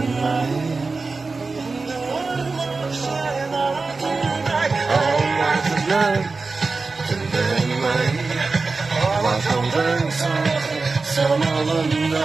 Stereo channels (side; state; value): left; quieter; 4.0 dB